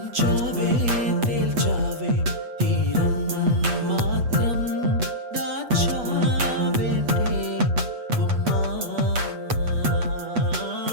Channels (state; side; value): late; left; 8.2 ms